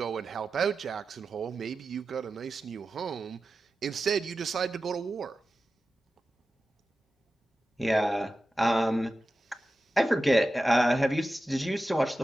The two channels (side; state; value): both; normal; correlation 0.93